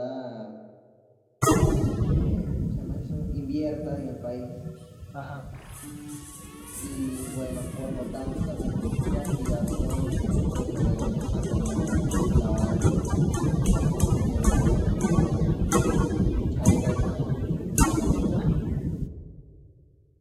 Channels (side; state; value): both; identical; correlation 1.00